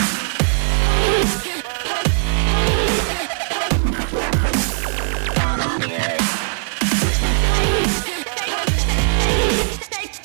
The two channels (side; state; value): left; silent; digital silence